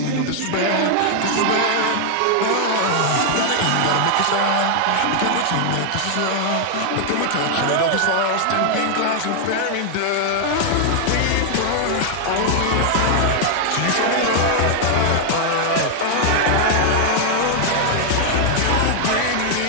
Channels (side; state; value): both; different; correlation 0.00